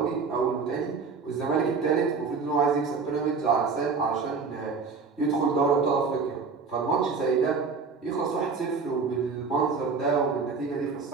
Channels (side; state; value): left; quieter; 5.0 dB